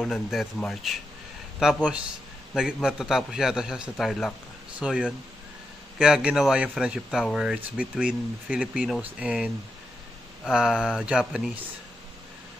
ng Death March. Tapos, matatapos yata siya sa Tarlac. So, yun. Kaya ginawa yung Friendship Tower. It's between Filipinos and Japanese.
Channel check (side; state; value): both; normal; correlation 0.86